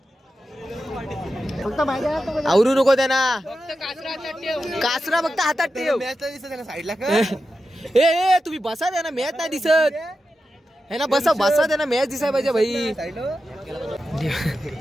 आवरू नको त्यांना. कासरा फक्त हातात ठेव. साईडला ए तुम्ही बसा द्या ना मॅच नाही दिसत है ना. बसा द्या ना मॅच दिसाय पाहिजे भाई.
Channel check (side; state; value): both; normal; correlation 0.91